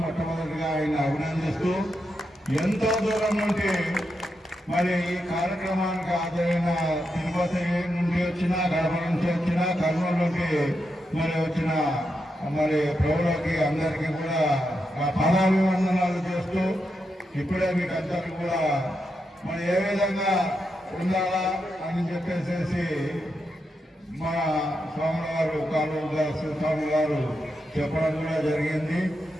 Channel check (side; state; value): both; normal; correlation 0.85